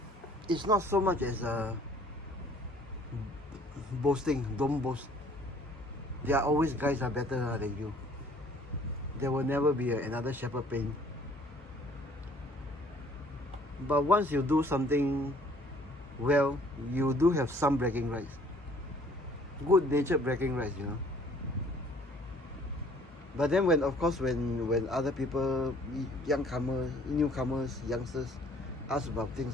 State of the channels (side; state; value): both; normal; correlation 0.57